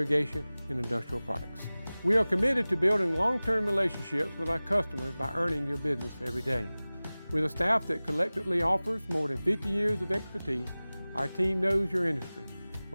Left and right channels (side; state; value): both; inverted; correlation -0.98